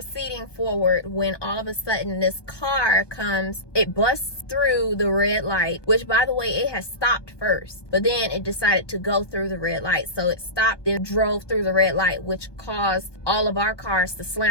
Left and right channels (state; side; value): late; right; 1.2 ms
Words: forward when all of a sudden this car comes, it busts through the red light, which by the way, it has stopped first, but then it decided to go through the red light. So it stopped, then drove through the red light, which caused all of our cars to